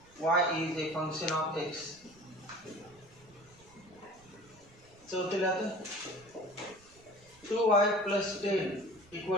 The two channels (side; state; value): right; noise; rumble, 27 dB below the sound